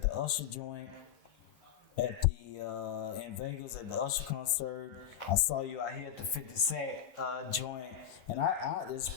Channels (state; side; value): quieter; right; 9.9 dB